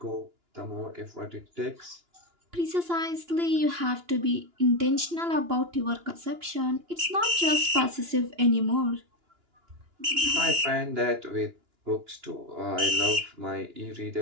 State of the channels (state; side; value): late; left; 2.9 ms